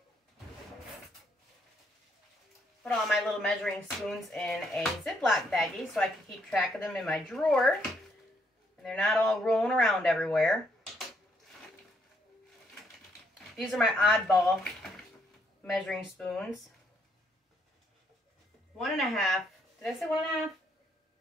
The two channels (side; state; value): both; normal; correlation 0.73